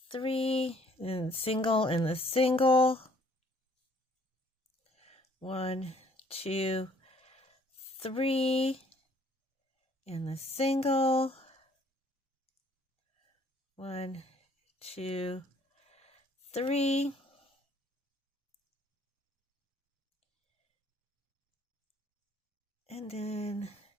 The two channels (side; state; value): both; normal; correlation 0.61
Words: 3, and single in the single, 1, 2, 3, and the single, 1, 2, 3, and then